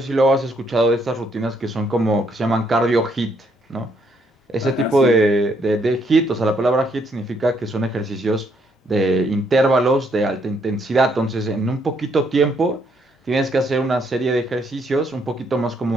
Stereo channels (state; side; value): normal; both; correlation 0.71